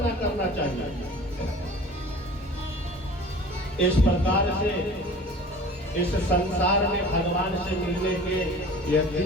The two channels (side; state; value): both; normal; correlation 0.43